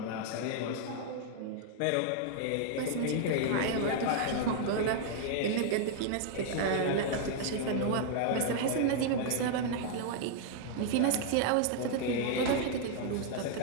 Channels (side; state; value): both; different; correlation 0.00